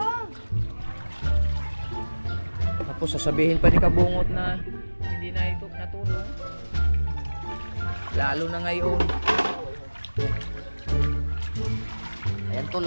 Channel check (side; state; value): both; inverted; correlation -1.00